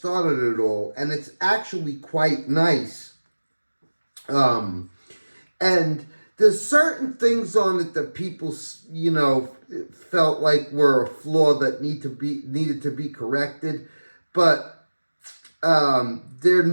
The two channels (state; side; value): inverted; both; correlation -1.00